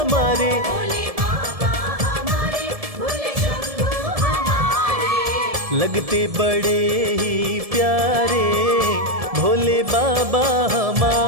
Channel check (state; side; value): late; left; 1.7 ms